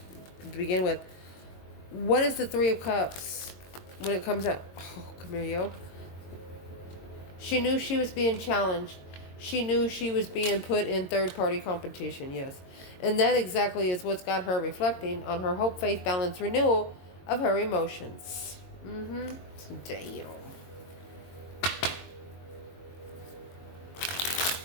to begin with. What is the 3 of Cups when it comes out? Oh, come here, yo. She knew she was being challenged. She knew she was being put in third-party competition, yes. And that exactly is what's got her reflecting on her hope, faith, balance, renewal of her emotions. Damn.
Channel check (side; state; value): right; late; 22 ms